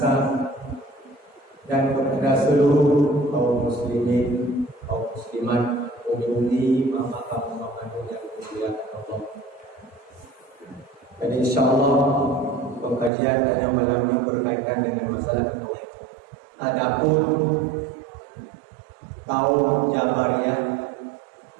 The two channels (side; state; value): left; drops out; at 13.1 s